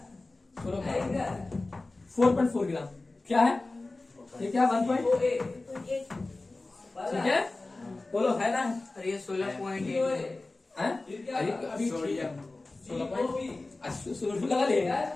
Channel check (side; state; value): right; quieter; 3.2 dB